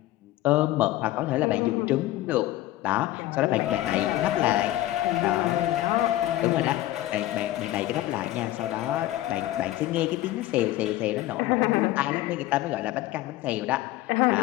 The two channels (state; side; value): quieter; right; 15.5 dB